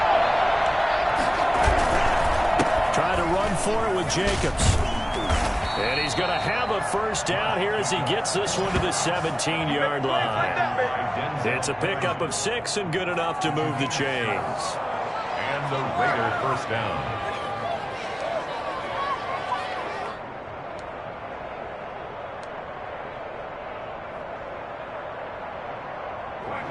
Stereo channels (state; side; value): identical; both; correlation 1.00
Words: Try to run for it with Jacobs. And he's going to have a 1st down here as he gets this one to the 17-yard line. It's a pickup of 6 and good enough to move the chains. And the Raider 1st down.